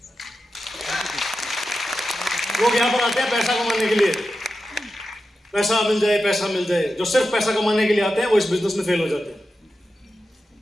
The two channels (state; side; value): normal; both; correlation 0.91